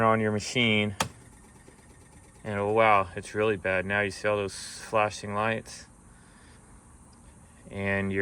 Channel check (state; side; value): identical; both; correlation 1.00